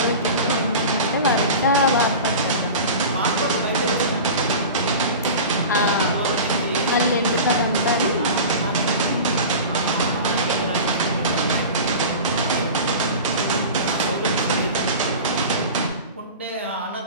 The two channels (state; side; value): inverted; both; correlation -0.33